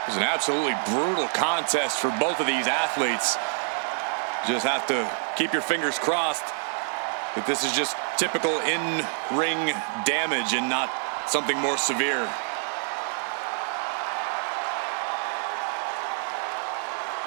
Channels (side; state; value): left; silent; 57 dB below the other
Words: was an absolutely brutal contest for both of these athletes. Just have to keep your fingers crossed that this is just typical in-ring damage and not something more severe.